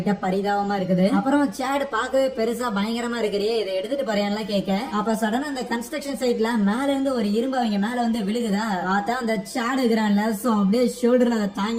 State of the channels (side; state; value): both; identical; correlation 1.00